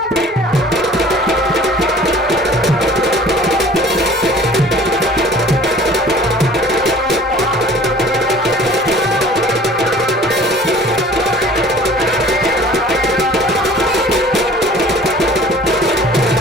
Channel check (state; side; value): normal; both; correlation 0.48